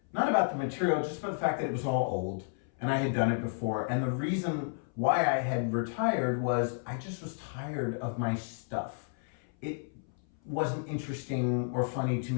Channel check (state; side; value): silent; right; 56 dB below the other